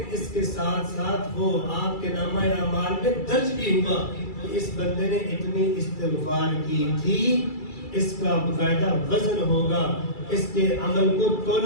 اس کے ساتھ ساتھ وہ آپ کے نامہ اعمال میں درج بھی ہوا کہ اس بندے نے اتنی استغفار کی تھی. اس کا باقاعدہ وزن ہوگا، اس کے عمل کو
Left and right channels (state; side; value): late; right; 2.3 ms